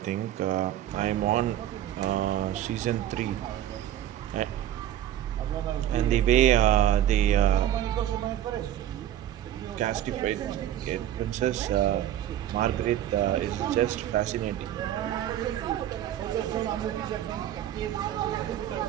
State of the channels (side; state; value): left; quieter; 11.9 dB